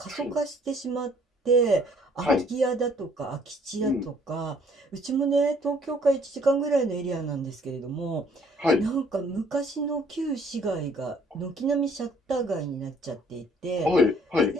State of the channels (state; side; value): normal; both; correlation 0.61